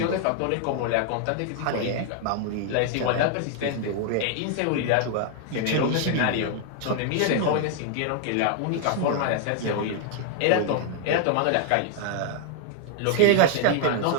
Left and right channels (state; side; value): different; both; correlation 0.00